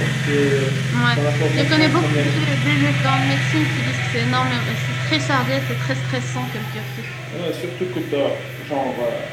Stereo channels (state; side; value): identical; both; correlation 1.00